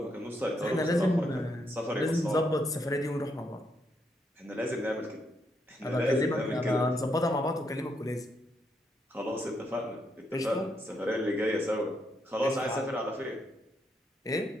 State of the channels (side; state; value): both; normal; correlation 0.77